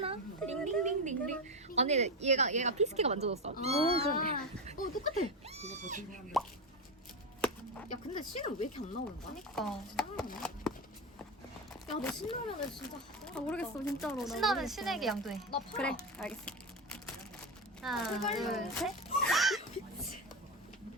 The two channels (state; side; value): normal; both; correlation 0.15